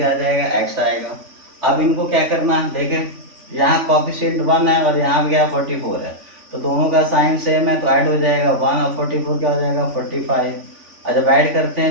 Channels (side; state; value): left; late; 3.5 ms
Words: आ जाएगा x आएगा। अब इनको क्या करना है देखें, यहाँ कॉफिशिएंट 1 है और यहाँ भी क्या 44 है, तो दोनों का साइन सेम है तो ऐड हो जाएगा 1 और 44 क्या हो जाएगा 45। और जब ऐड करते